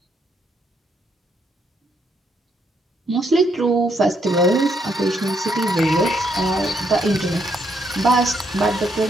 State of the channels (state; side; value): normal; both; correlation 0.74